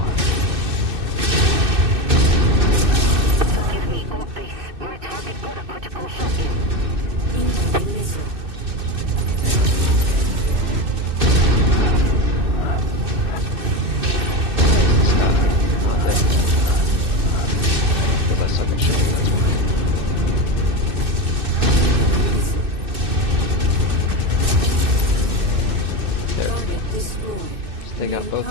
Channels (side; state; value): left; late; 2.6 ms